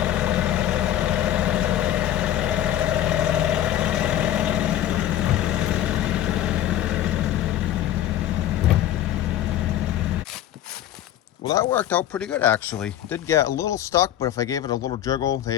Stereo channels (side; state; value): right; quieter; 12.0 dB